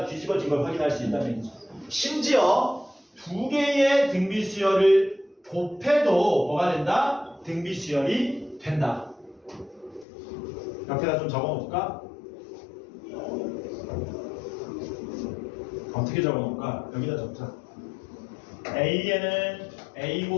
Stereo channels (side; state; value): right; drops out; at 10.1 s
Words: 뒤집어진 걸 확인할 수 있다는 얘기죠. 심지어 두 개의 등비수열을 곱해도 뭐가 된다? 등비수열이 된다. 옆에다 좀 적어놓을까? 어떻게 적어놓을까? 여기다 적자. A에는 A